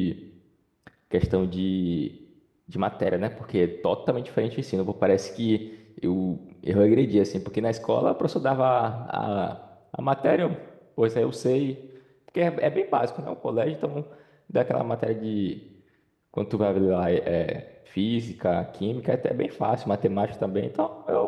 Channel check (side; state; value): both; identical; correlation 1.00